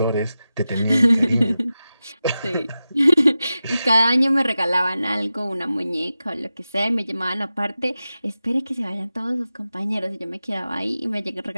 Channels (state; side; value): inverted; both; correlation -0.93